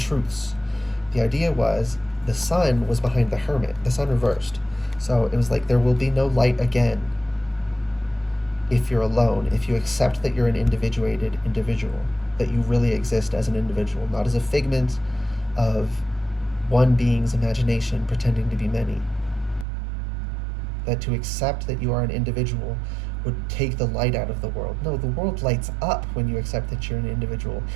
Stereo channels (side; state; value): left; drops out; at 19.7 s